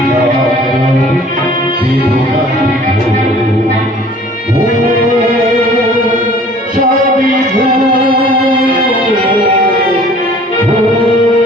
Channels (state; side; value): normal; both; correlation 0.51